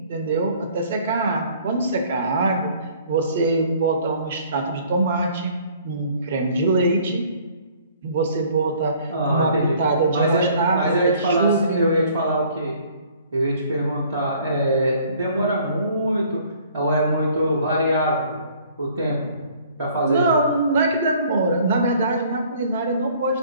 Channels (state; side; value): inverted; both; correlation -0.57